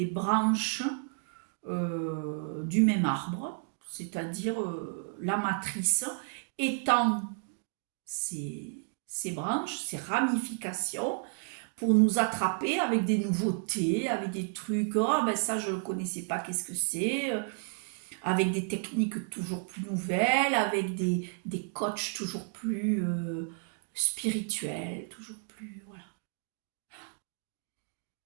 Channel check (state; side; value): silent; left; 57 dB below the other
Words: branches du même arbre, c'est-à-dire la matrice étend ces branches, ces ramifications, pour nous attraper avec des nouveautés, avec des trucs, oh ben ça je ne connaissais pas, qu'est-ce que c'est? avec des techniques toujours plus nouvelles, avec des coachs toujours plus spirituels, toujours plus... Voilà.